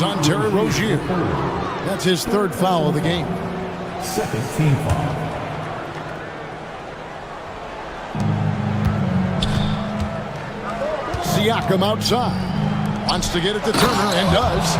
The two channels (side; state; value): both; identical; correlation 1.00